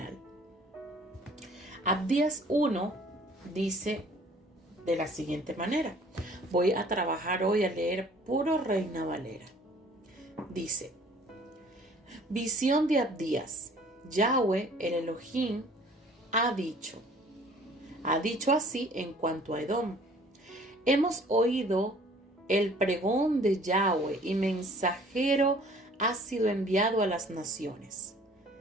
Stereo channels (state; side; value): normal; both; correlation 0.54